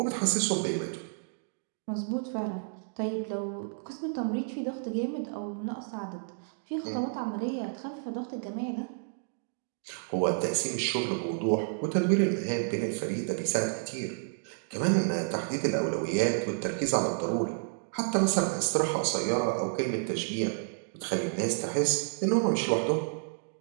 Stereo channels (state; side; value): silent; left; digital silence